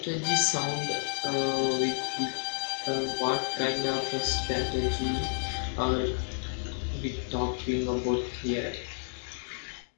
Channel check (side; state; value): right; silent; digital silence